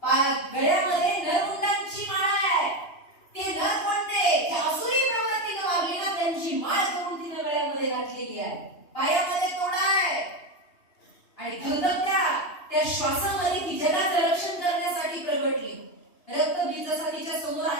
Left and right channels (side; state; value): right; late; 2.8 ms